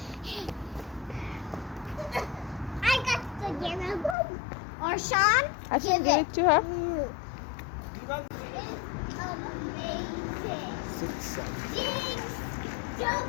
I got the game. Or Sean, আচ্ছা, give it to her.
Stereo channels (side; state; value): right; drops out; at 4.2 s